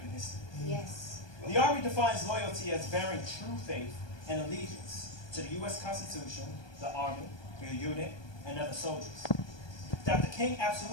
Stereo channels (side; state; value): right; late; 1.2 ms